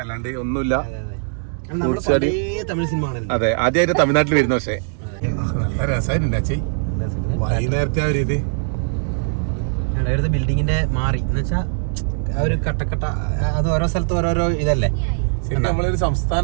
അല്ലാണ്ട് ഒന്നുമില്ല. നമ്മുടെ പഴയ തമിഴ് സിനിമ ആണല്ലോ. അതെ, ആദ്യമായിട്ട് തമിഴ്നാട്ടിൽ വരുന്ന. പക്ഷേ നല്ല രസമായിട്ടുണ്ട് അച്ഛേ. വൈകുന്നേരത്തെ ആ ഒരു ഇത് ഇവിടുത്തെ ബിൽഡിങ്ങിന്റെ മാറി എന്ന് വെച്ചാ ആ ഒരു കട്ടക്കട്ട, അത് ഓരോ സ്ഥലത്ത് ഓരോരോ ഇതല്ലേ. ശരിക്കും നമ്മളൊരു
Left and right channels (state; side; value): silent; left; digital silence